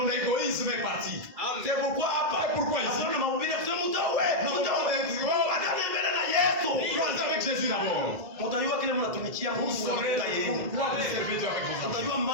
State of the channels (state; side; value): late; left; 2.0 ms